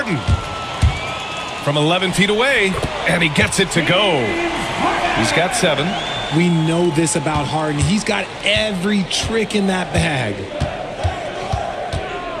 From 11 feet away. And he gets it to go. He's got 7. We know this about Harden. He's got every trick in that bag.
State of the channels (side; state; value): both; identical; correlation 1.00